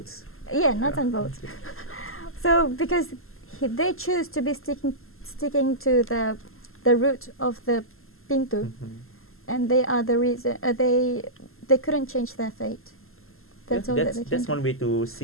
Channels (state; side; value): late; right; 0.62 ms